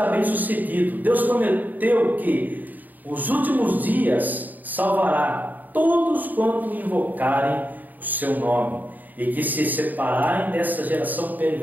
bem sucedido. Deus prometeu que os últimos dias salvará todos quanto invocarem o seu nome, e que se separarem dessa geração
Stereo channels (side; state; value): left; late; 0.085 ms